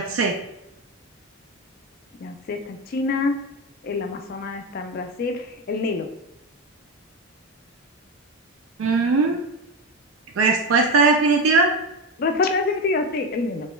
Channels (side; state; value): both; normal; correlation 0.16